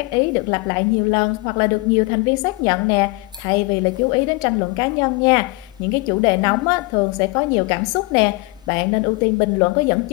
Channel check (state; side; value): quieter; right; 24.0 dB